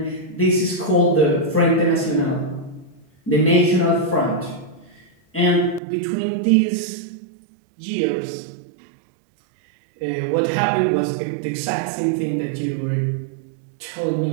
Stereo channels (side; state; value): left; drops out; at 5.8 s